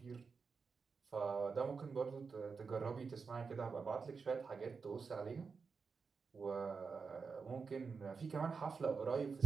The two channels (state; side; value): quieter; left; 5.1 dB